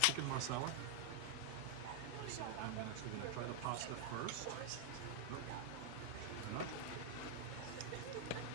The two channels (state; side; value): different; both; correlation 0.00